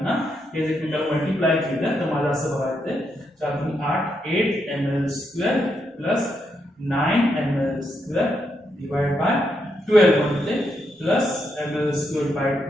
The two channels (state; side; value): normal; both; correlation 0.80